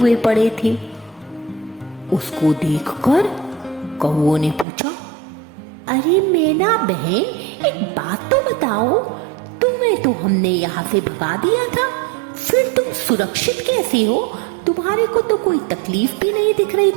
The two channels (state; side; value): drops out; left; at 4.7 s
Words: पड़े थे। उसको देखकर कौवों ने पूछा, अरे मैना बहन, एक बात तो बताओ, तुम्हें तो हमने यहाँ से भगा दिया था, फिर तुम सुरक्षित कैसे हो? तुम्हारे को तो कोई तकलीफ भी नहीं दिख रही